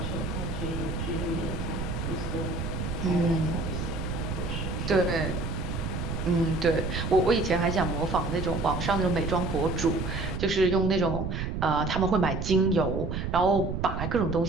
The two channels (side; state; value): right; noise; rumble, 4 dB below the sound